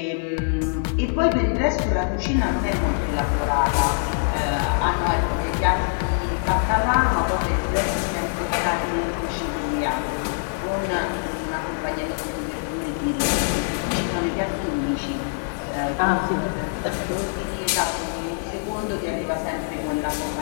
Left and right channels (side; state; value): right; silent; 63 dB below the other